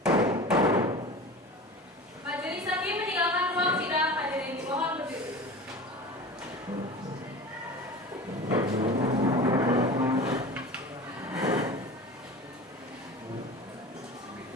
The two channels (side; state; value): both; normal; correlation 0.34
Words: Majelis hakim meninggalkan ruang sidang. Hadirin mohon berdiri.